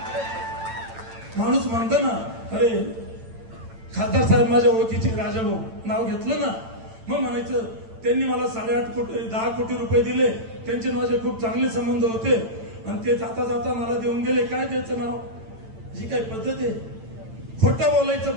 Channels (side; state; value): left; late; 8.9 ms